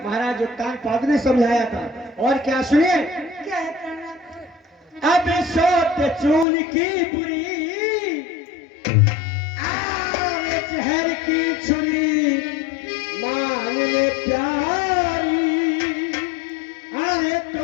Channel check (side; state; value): right; drops out; at 6.5 s